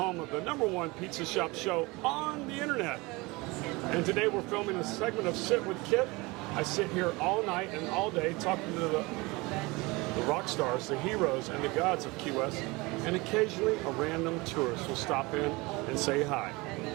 of the #1 pizza shop show on the internet. And today we're filming a segment of Sit with Kit. I sit here all night and all day talking to the rock stars, the heroes, and the gods of Key West. And occasionally a random tourist will stop in and say hi.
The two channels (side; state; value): left; quieter; 24.0 dB